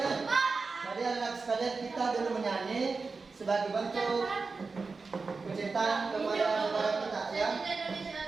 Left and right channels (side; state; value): left; quieter; 4.3 dB